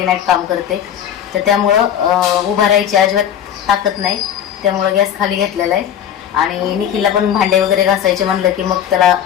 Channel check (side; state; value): right; quieter; 9.7 dB